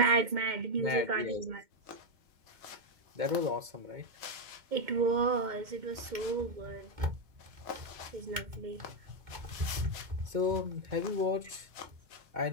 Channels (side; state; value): left; late; 2.2 ms